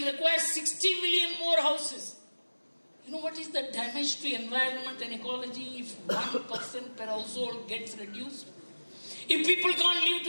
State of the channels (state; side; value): inverted; both; correlation -1.00